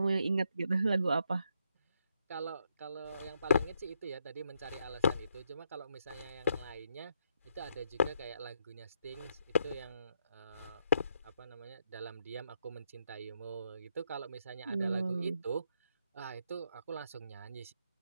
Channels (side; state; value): both; inverted; correlation -0.78